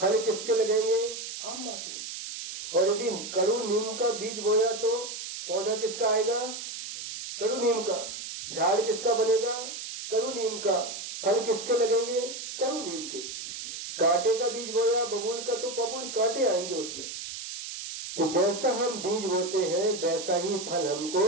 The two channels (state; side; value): noise; right; hiss, 8 dB below the sound